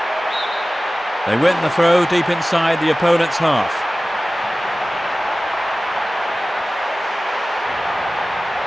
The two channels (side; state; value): both; normal; correlation 0.97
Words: They win the throw deep inside the opponent's half.